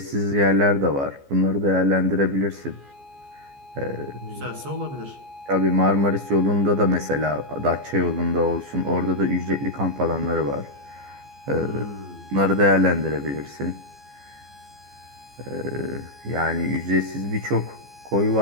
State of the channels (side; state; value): left; late; 14 ms